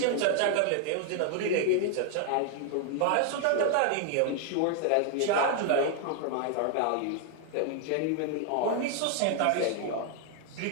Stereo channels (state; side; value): different; both; correlation 0.00